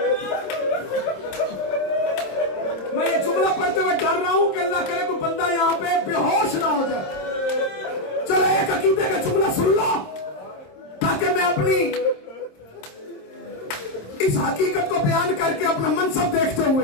मैं ये जुमला पढ़ते हुए डर रहा हूं कि अल्लाह करे कोई बंदा यहां पे बेहोश ना हो जाए। चलो एक अकीदे का जुमला सुन लो ताकि मैं अपनी इस हकीकत को बयान करके अपना मनसब देखते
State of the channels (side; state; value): right; late; 26 ms